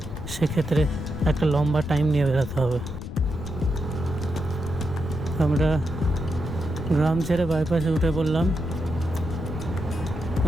সেক্ষেত্রে একটা লম্বা টাইম নিয়ে বেরোতে হবে। আমরা গ্রাম ছেড়ে বাইপাসে উঠে পড়লাম।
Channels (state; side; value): noise; left; rumble, 9 dB below the sound